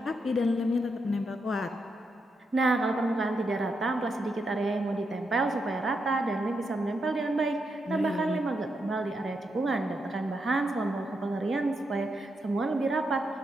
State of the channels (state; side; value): normal; both; correlation 0.83